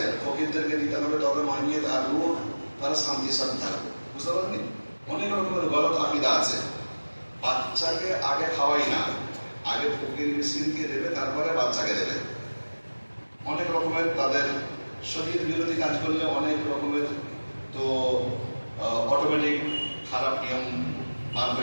ফকিরদেরকে দিতে হবে, তবে মানিয়ে থাকবো, তারা শান্তির সাথে থাকবে। বুঝতে পারেননি? অনেক রকমের গলত আকিদা আছে। বাচ্চাকে আগে খাওয়াই না, আগে ফকির মিসকিনকে দেবে, তারপরে বাচ্চাকে দেবে। অনেক রকমের তাদের শরীর বিরোধী কাজ করলে অনেক রকমের তো অটোমেটিক খারাপ নিয়ম বার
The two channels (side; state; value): both; inverted; correlation -1.00